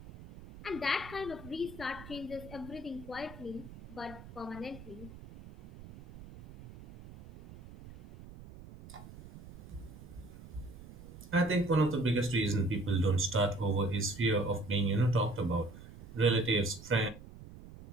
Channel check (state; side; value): noise; right; rumble, 16 dB below the sound